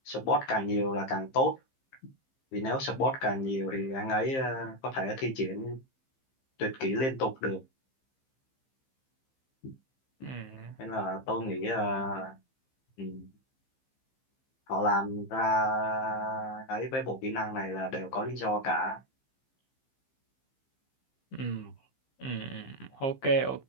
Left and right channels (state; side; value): late; right; 15 ms